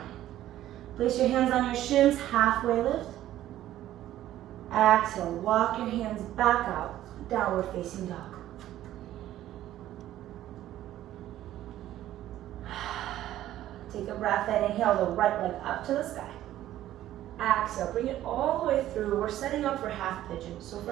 Place your hands on your shins, halfway lift. Exhale, walk your hands back out, downward facing dog. Take a breath in, inhale the right leg up to the sky. Exhale, bring it all the way through. We're setting up for half pigeon. So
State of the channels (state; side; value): quieter; left; 13.3 dB